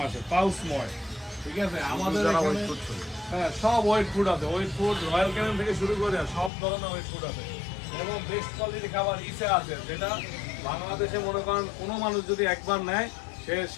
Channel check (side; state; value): right; drops out; at 6.5 s